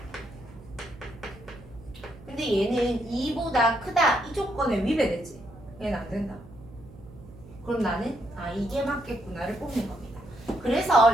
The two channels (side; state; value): right; noise; hum, 19 dB below the sound